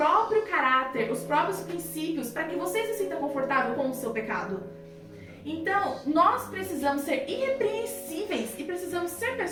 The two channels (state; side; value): identical; both; correlation 1.00